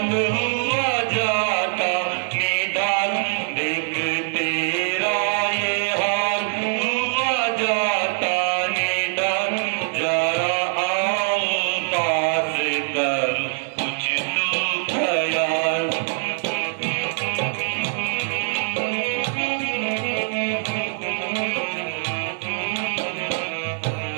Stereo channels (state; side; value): silent; left; 63 dB below the other